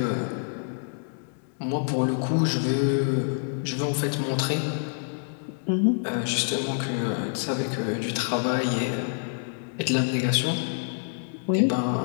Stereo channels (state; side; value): silent; right; digital silence